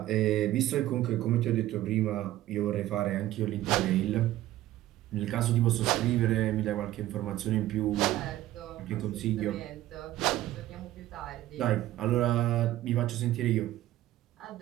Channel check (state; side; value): quieter; left; 14.7 dB